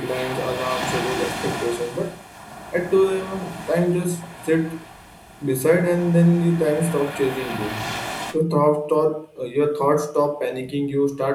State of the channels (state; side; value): identical; both; correlation 1.00